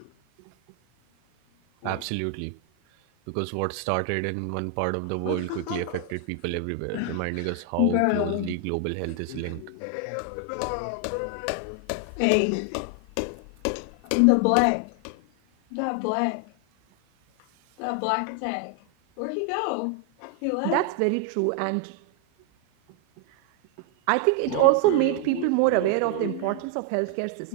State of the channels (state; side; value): different; both; correlation 0.00